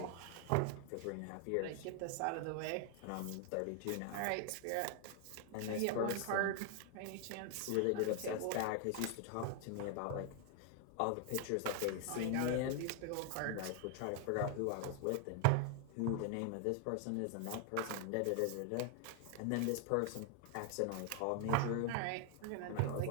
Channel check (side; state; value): both; different; correlation 0.00